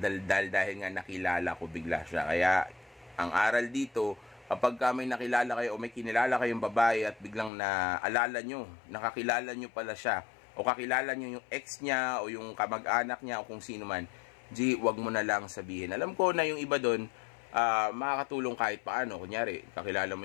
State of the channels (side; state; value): right; drops out; at 7.5 s